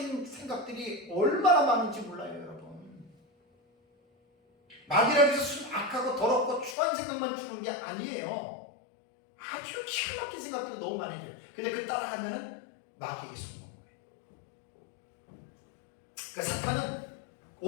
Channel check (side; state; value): right; drops out; at 6.8 s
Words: 생각들이 얼마나 많은지 몰라요, 여러분. 마귀라고 해서 악하고 더럽고 추한 생각만 주는 게 아니에요. 아주 기가 막힌 생각들이 너무 많이 줘요. 근데 그 따라가면은 마귀에게 숨는 거예요. 그러니까 사탄은